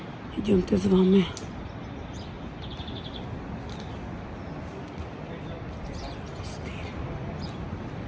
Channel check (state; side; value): identical; both; correlation 1.00